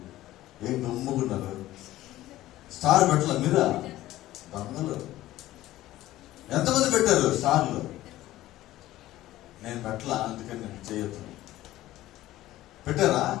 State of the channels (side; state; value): right; quieter; 15.4 dB